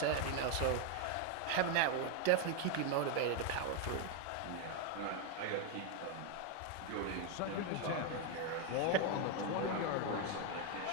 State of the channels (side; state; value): both; different; correlation 0.01